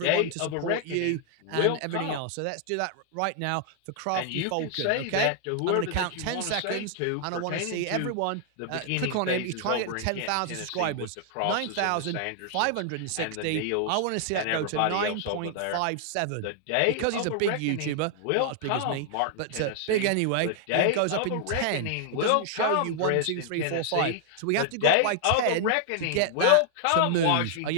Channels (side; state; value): both; different; correlation 0.00